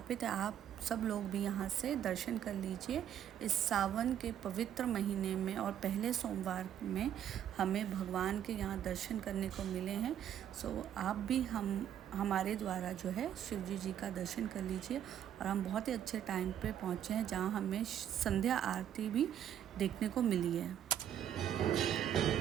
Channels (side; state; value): left; quieter; 10.1 dB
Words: है, आप सब लोग भी यहाँ से दर्शन कर लीजिए। इस सावन के पवित्र महीने में और पहले सोमवार में हमें भगवान के यहाँ दर्शन करने को मिले हैं। सो आप भी हमारे द्वारा जो है शिवजी जी का दर्शन कर लीजिए। और हम बहुत ही अच्छे टाइम पे पहुँचे हैं जहाँ हमें संध्या आरती भी देखने को मिली है।